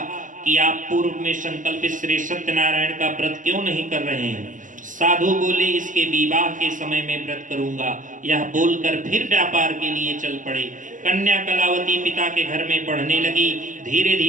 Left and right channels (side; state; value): left; late; 0.38 ms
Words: कि आप पूर्व में संकल्पित श्री सत्यनारायण का व्रत क्यों नहीं कर रहे हैं? साधु बोले, इसके विवाह के समय में व्रत करूंगा। यह बोलकर फिर व्यापार के लिए चल पड़े। कन्या कलावती पिता के घर में पढ़ने लगी। धीरे